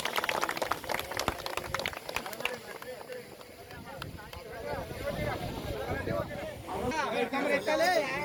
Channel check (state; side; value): identical; both; correlation 1.00